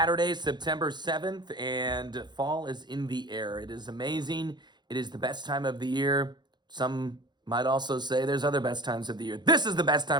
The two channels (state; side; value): late; left; 0.21 ms